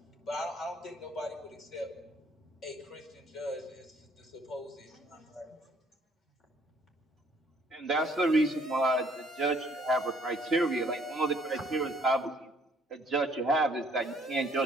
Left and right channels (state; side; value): normal; both; correlation 0.62